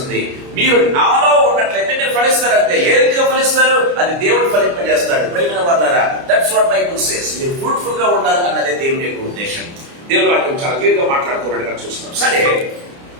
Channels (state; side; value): late; left; 29 ms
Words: మీరు నాలో ఉన్నట్లయితే మీరు ఫలిస్తారంటే. ఏ రీతిగా ఫలిస్తారు? అది దేవుడు ఫలింపజేస్తాడు. ప్రేమైన వాళ్ళారా, దట్స్ వాట్ బైబుల్ సేస్. మీరు ఫ్రూట్ఫుల్ గా ఉండాలి అన్నదే దేవుని యొక్క ఉద్దేశం. దేవుని వాక్యం చాలా క్లియర్ గా మాట్లాడుతున్నట్టుగా చూస్తున్నాం. సరే,